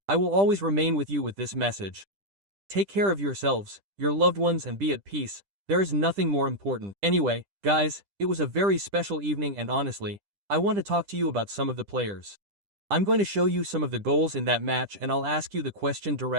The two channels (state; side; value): late; left; 10 ms